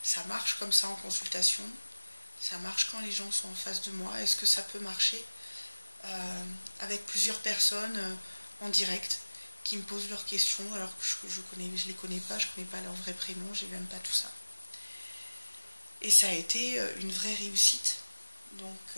ça marche comme ça en consultation, ça marche quand les gens sont en face de moi, est-ce que ça peut marcher avec plusieurs personnes en direct qui me posent leurs questions alors que je les connais pas, je connais pas leur vrai prénom, j'ai même pas tout ça. Et ça a été une vraie réussite. Donc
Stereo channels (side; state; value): both; inverted; correlation -1.00